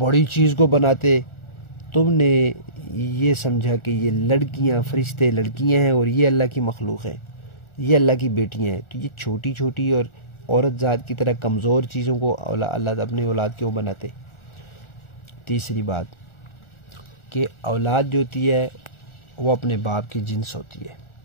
چیز کو بناتے۔ تم نے یہ سمجھا کہ یہ لڑکیاں، فرشتے لڑکیاں ہیں اور یہ اللہ کی مخلوق ہیں، یہ اللہ کی بیٹیاں ہیں، تو یہ چھوٹی چھوٹی اور عورت ذات کی طرح کمزور چیزوں کو اللہ اپنی اولاد کیوں بناتے؟ تیسری بات کہ اولاد جو ہوتی ہے وہ اپنے باپ کی جنس ہوتی ہے۔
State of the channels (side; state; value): right; late; 1.4 ms